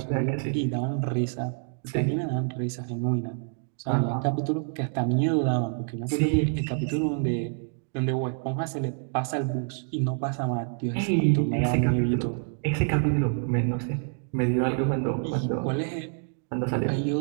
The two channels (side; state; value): left; silent; 60 dB below the other